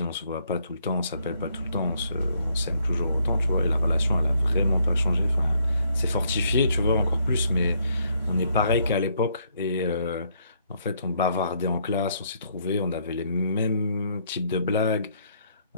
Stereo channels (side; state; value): both; inverted; correlation -0.70